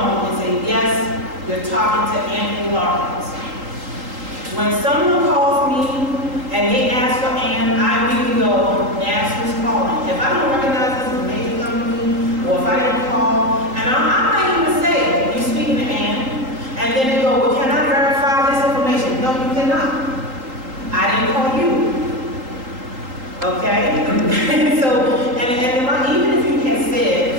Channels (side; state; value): left; late; 3.8 ms